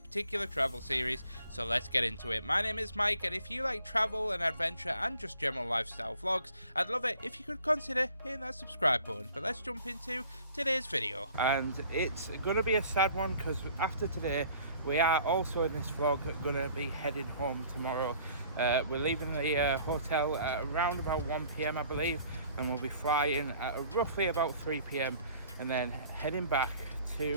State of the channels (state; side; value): inverted; both; correlation -0.54